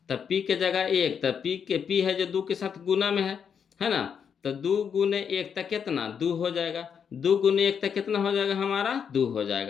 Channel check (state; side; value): quieter; right; 7.2 dB